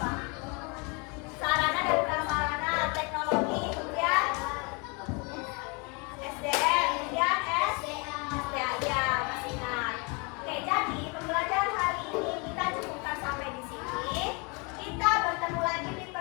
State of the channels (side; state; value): right; quieter; 31.2 dB